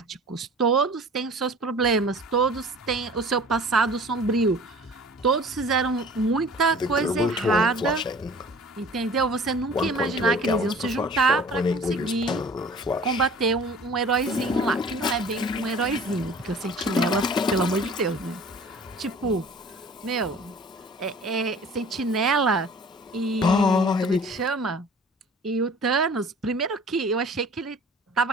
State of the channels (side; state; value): both; normal; correlation 0.46